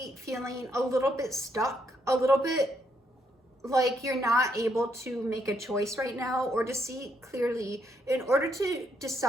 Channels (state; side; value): normal; both; correlation 0.74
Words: feeling a little bit stuck, a little bit like you're not able to make a choice right now or to see clearly in order to